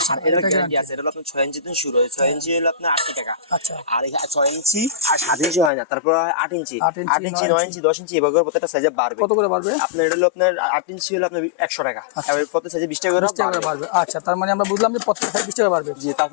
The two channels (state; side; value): drops out; right; at 5.7 s